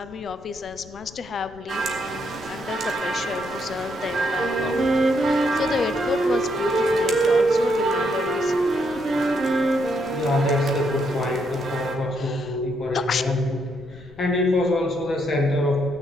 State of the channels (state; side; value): noise; left; rumble, 22 dB below the sound